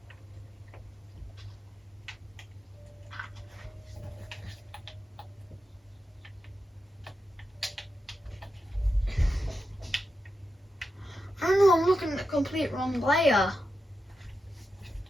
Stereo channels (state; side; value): normal; both; correlation 0.89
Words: I don't know, I'm looking at the complete wrong layer.